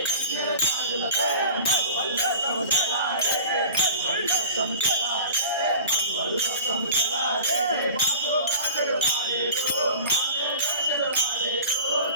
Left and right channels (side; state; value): both; inverted; correlation -0.39